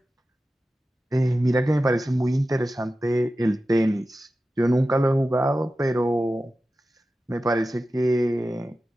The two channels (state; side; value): normal; both; correlation 0.94